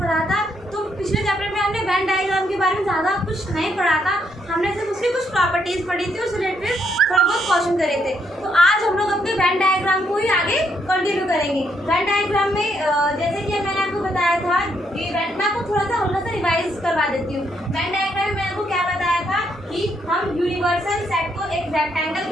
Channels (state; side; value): normal; both; correlation 0.75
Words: था। तो पिछले चैप्टर में हमने वेन डायग्राम के बारे में ज़्यादा कुछ नहीं पढ़ा था, हमने सिर्फ उसकी कुछ प्रॉपर्टीज पढ़ी थी, उस रिलेटेड थोड़ा बहुत क्वेश्चन करे थे। तो आज हम लोग अपने वेन डायग्राम को ही आगे कंटिन्यू करेंगे। वेन डायग्राम में जैसे कि मैंने आपको बताया था कि मैं आपको थोड़ा सा हल्का सा रिवाइज करवा देती हूँ। वेन डायग्राम में मैंने आपको क्या बताया था कि हम यूनिवर्सल सेट को एक रेक्टेंगल